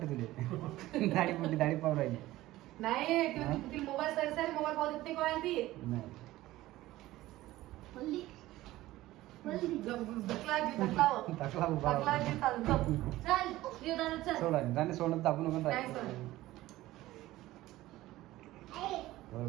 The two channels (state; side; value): quieter; left; 16.6 dB